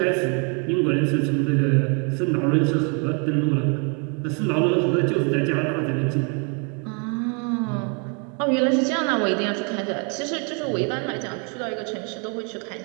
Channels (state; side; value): quieter; left; 36.8 dB